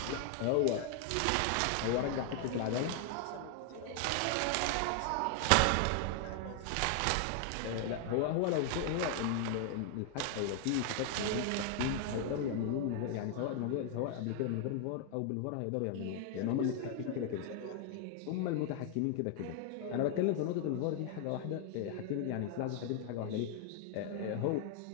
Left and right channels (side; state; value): both; different; correlation 0.00